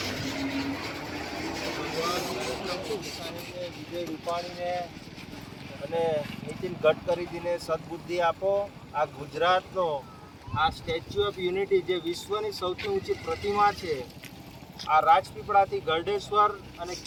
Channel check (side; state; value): both; identical; correlation 1.00